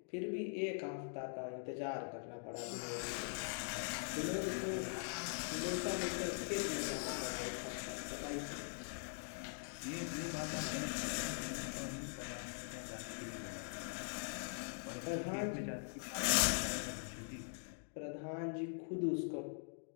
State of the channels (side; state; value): right; silent; digital silence